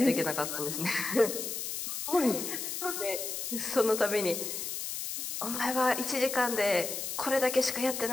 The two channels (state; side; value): noise; left; hiss, 4 dB below the sound